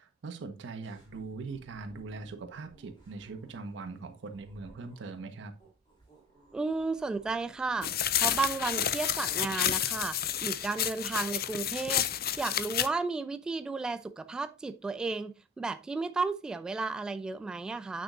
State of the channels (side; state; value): both; normal; correlation 0.45